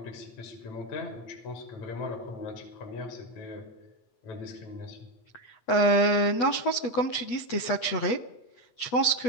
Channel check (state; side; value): late; right; 8.3 ms